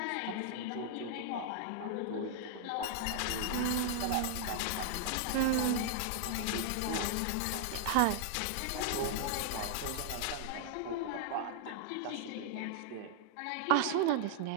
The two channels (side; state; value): both; different; correlation -0.01